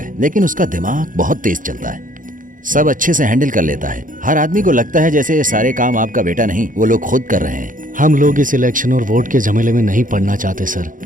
लेकिन उसका दिमाग बहुत तेज चलता है। सब अच्छे से हैंडल कर लेता है। हर आदमी को लगता है जैसे ये सारे काम आपका बेटा नहीं, वो लोग खुद कर रहे हैं। हम लोग इस इलेक्शन और वोट के झमेले में नहीं पड़ना चाहते सर।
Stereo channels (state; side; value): late; left; 0.39 ms